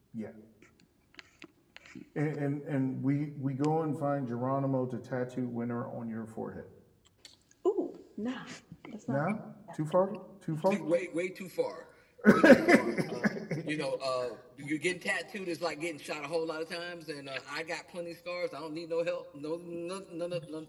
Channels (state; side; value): identical; both; correlation 1.00